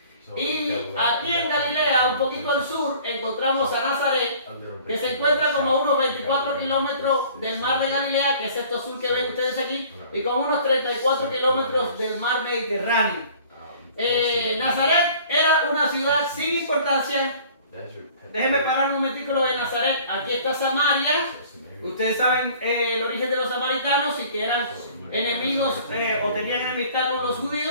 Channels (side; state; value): both; inverted; correlation -0.50